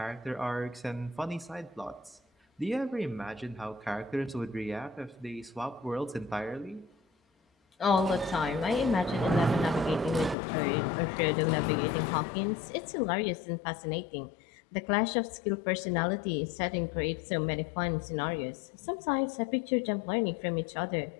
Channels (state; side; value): drops out; right; at 10.4 s